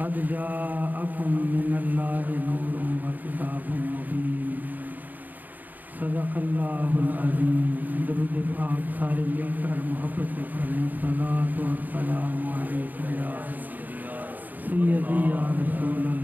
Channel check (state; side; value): late; left; 0.085 ms